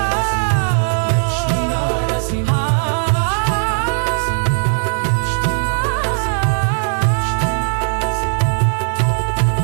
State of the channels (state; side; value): silent; left; 64 dB below the other